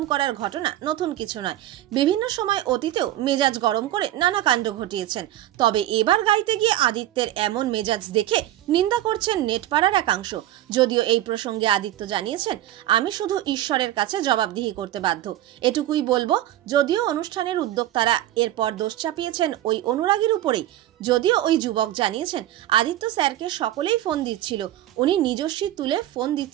করার ঘটনা নতুন কিছু নয়। বিভিন্ন সময় অতীতেও মেজাজ গরম করে নানা কাণ্ড ঘটিয়েছেন। তবে এবার গাইতে গিয়ে আদিত্যের এমন মেজাজ দেখে নিন্দা করছেন নেটপাড়ার একাংশ। যদিও এই প্রসঙ্গে আদিত্য জানিয়েছেন, আমি শুধু ঈশ্বরের কাছে জবাবদিহি করতে বাধ্য, এটুকুই বলবো। যদিও অনুষ্ঠানের উদ্যোক্তারা এরপর দোষ চাপিয়েছেন ওই অনুরাগীর উপরেই। যদিও ওই যুবক জানিয়েছেন, আদিত্য স্যারকে সকলেই ফোন দিচ্ছিল, উনি নিজস্বী তুলে ফোন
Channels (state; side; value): quieter; left; 13.7 dB